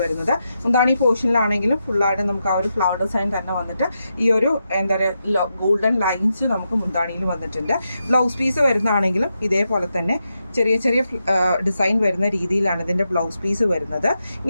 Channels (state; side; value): inverted; both; correlation -0.86